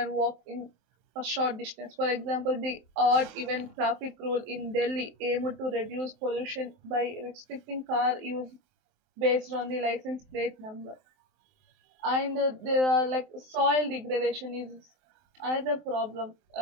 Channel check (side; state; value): left; late; 23 ms